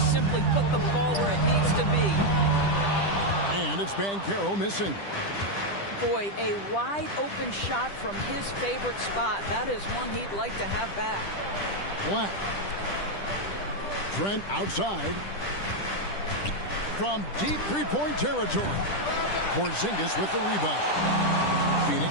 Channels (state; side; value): late; right; 10 ms